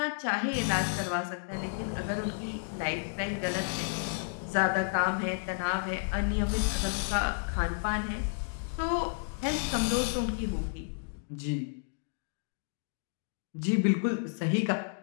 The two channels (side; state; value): right; silent; digital silence